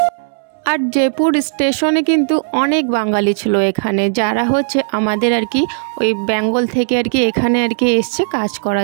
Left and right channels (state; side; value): silent; left; 69 dB below the other